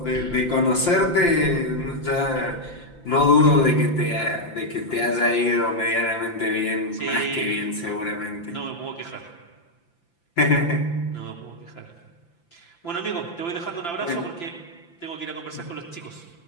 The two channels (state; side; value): late; right; 5.9 ms